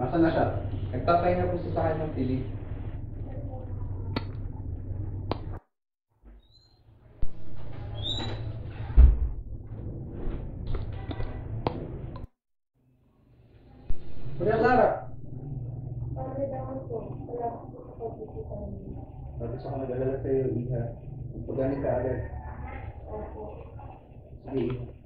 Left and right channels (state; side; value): identical; both; correlation 1.00